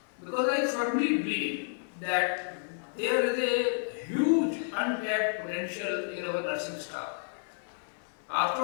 Because I firmly believe that there is a huge untapped potential in our nursing staff. After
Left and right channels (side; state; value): right; silent; digital silence